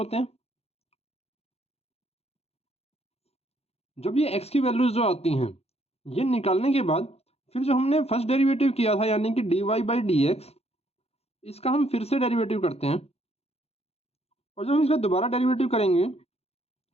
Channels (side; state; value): right; late; 0.30 ms